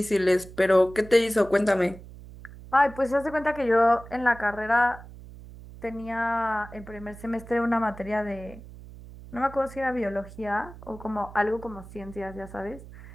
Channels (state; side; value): noise; right; hum, 17 dB below the sound